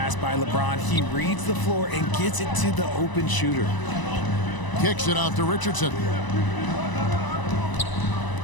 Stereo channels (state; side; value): late; right; 1.0 ms